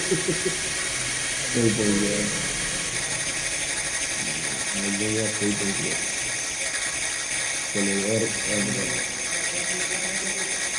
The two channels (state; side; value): identical; both; correlation 1.00